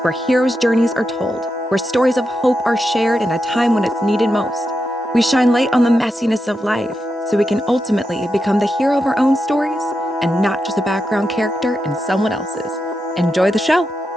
where heroes' journeys are told, where stories of hope are shared in a time when it's needed most. We shine light on the messiness of life so we can ultimately become the hero of our own stories and not just a background character in someone else's. Enjoy the show.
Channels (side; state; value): both; normal; correlation 0.87